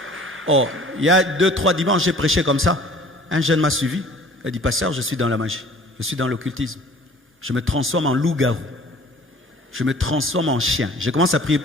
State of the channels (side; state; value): both; normal; correlation 0.50